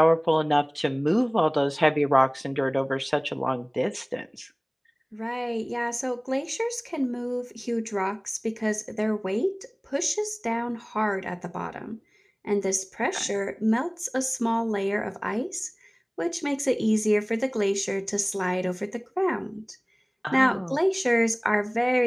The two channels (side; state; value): both; identical; correlation 1.00